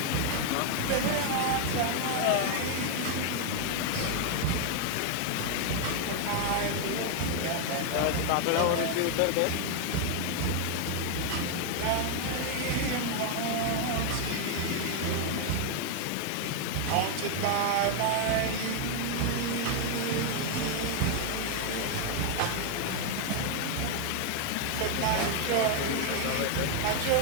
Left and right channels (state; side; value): different; both; correlation 0.00